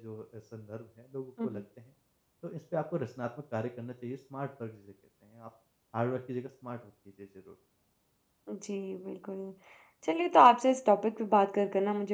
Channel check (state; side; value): identical; both; correlation 1.00